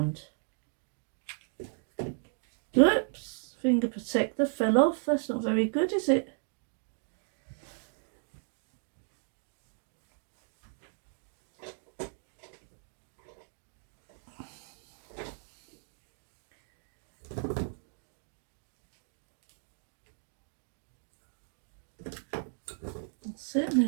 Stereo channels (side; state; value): left; silent; 54 dB below the other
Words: Oops, finger protector fell off. That's not very good, is it? That's it, and